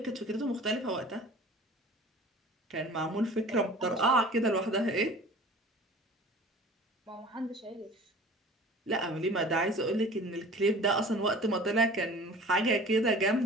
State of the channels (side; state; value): both; normal; correlation 0.43